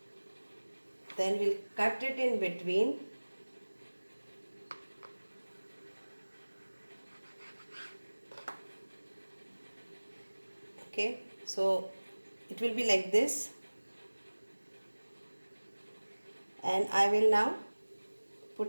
Then we'll cut it in between. Okay, so it will be like this, and I will now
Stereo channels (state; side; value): inverted; both; correlation -1.00